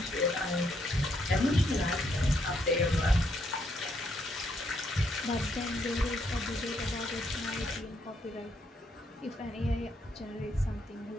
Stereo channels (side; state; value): both; normal; correlation 0.74